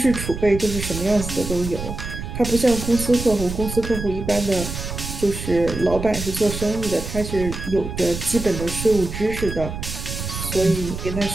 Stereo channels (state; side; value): noise; right; rumble, 7 dB below the sound